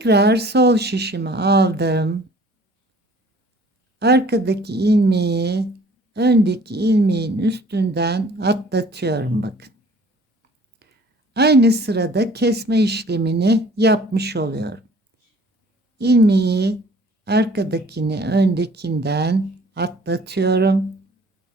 sol şişimi aldım. Arkadaki ilmeği öndeki ilmeğin üstünden atlatıyorum bakın. Aynı sırada kesme işlemini yapmış oluyorum. İlmeği arkadakini öndekinden atlatıyorum.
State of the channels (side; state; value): both; normal; correlation 0.52